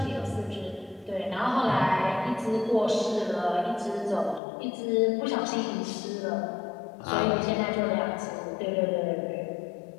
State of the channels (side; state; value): right; drops out; at 4.4 s